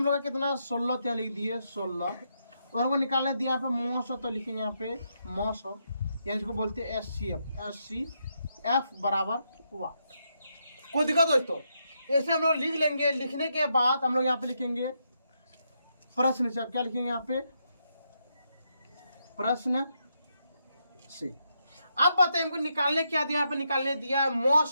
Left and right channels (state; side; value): inverted; both; correlation -0.80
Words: लोग का कितना है? 16। क्या लिख दिए? 16। और वो निकालने दिया यहाँ पे मौ सौ, तो लिखेंगे यहाँ पे मौ सौ, या इसको बोलते हैं एफ बराबर 1। कोई दिक्कत दोस्तों? ऐसे हम लोग लिख लेंगे। लिखने के बाद हम लोग यहाँ पे लिखेंगे प्रश्न से। अब क्या लिखेंगे यहाँ पे? प्रश्न से। अब बताइए हमको निकालने क्या दिया? यहाँ पे निकालने दिया है मौ